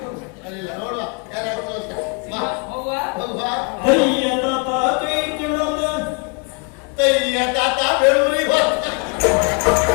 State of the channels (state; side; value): quieter; right; 34.0 dB